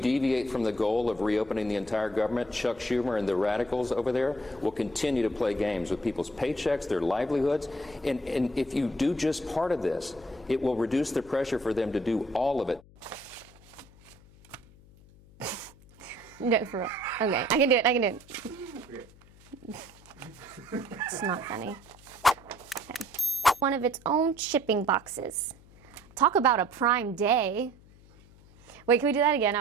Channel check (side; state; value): left; noise; hum, 24 dB below the sound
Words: from the goal of reopening the entire government, Chuck Schumer and the radicals over there will continue to play games with people's paychecks, their livelihoods. And if you do just part of this, it will reduce the pressure for them to do all of it. No, for real. Okay, I can do it. It's not funny. Okay. One of its own shipping boxes. Talk about a prime day. Wait, can we do that again? I